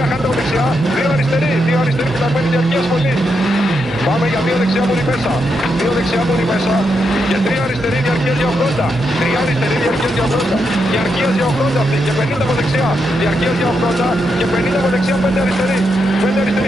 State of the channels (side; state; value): both; normal; correlation 0.82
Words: χάνετε από δεξιά, 2 αριστερή φυλαγμένη, διαρκείας πολύ. Πάμε για 2 δεξιά μόνοι μέσα. 2 δεξιά μόνοι μέσα. Και 3 αριστερή διαρκείας για 80. 3 αριστερή διαρκείας για 80. Διαρκείας για 80 αυτή. Και 50 από δεξιά. Διαρκείας για 80. Και 50 από δεξιά. 5 αριστερή. 5